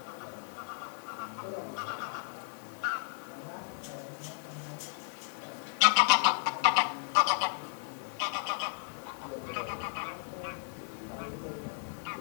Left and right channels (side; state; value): right; silent; 55 dB below the other